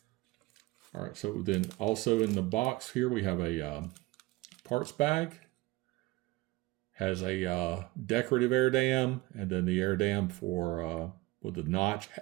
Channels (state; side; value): quieter; left; 20.4 dB